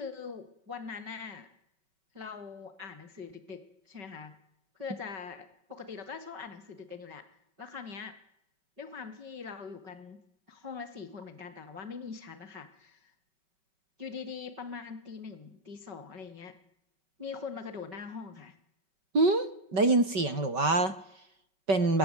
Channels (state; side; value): late; left; 5.3 ms